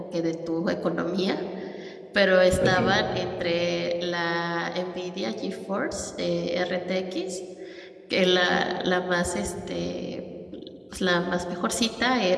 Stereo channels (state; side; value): identical; both; correlation 1.00